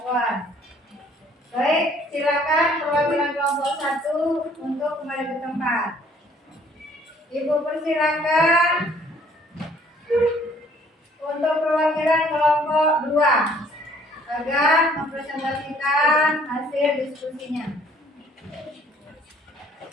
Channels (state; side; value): normal; both; correlation 0.59